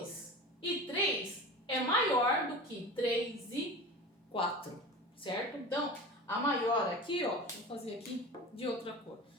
e 3 é maior do que 3 e 4, certo? Então, a maior aqui, ó, vou fazer aqui de outra cor,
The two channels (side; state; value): both; normal; correlation 0.33